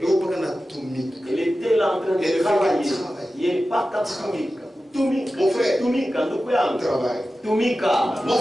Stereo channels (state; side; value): normal; both; correlation 0.94